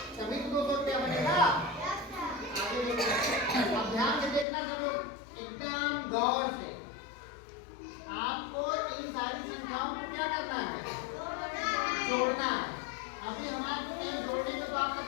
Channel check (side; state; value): right; drops out; at 4.5 s